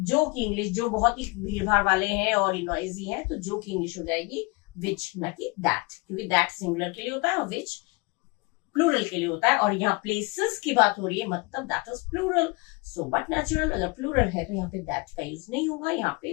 जो की इंग्लिश, जो बहुत ही भीड़ भाड़ वाले हैं और नॉइजी हैं, तो जो की इंग्लिश हो जाएगी विच, ना कि दैट, क्योंकि दैट सिंगुलर के लिए होता है और विच प्लूरल के लिए होता है। और यहाँ प्लेसेस की बात हो रही है, मतलब that is plural, so but natural, अगर प्लूरल है तो यहाँ पे दैट का यूज नहीं होगा, यहाँ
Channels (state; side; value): quieter; right; 26.6 dB